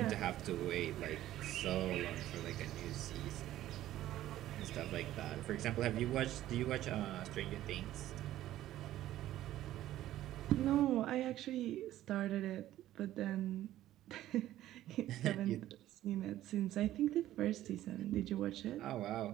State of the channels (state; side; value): quieter; left; 13.8 dB